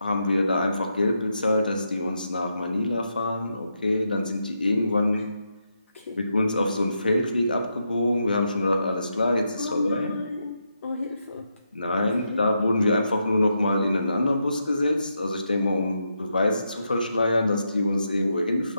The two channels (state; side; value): inverted; both; correlation -0.83